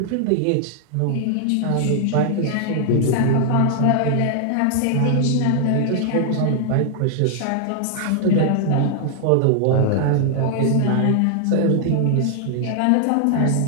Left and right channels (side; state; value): both; different; correlation 0.00